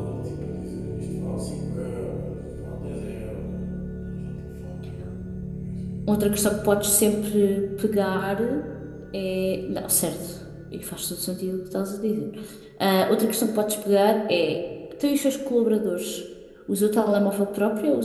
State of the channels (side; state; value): both; identical; correlation 1.00